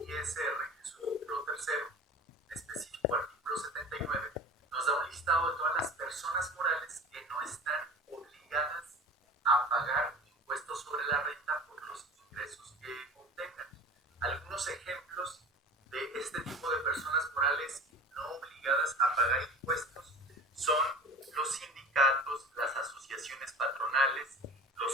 ISR, en su título tercero, en específico artículo 79, nos da un listado de todas las personas morales que no están obligadas a pagar impuestos sobre la renta por los ingresos que obtengan. Algunos ejemplos de este tipo de personas morales no obligadas a pagar impuestos son los sindicatos, las asociaciones patronales,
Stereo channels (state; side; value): normal; both; correlation 0.38